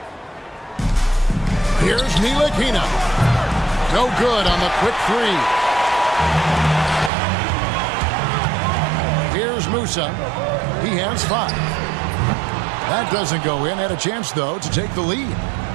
Here's Ntilikina. No good on the quick 3. Here's Musa. He has 5. That doesn't go in. Had a chance, though, to take the lead.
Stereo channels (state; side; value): drops out; left; at 7.1 s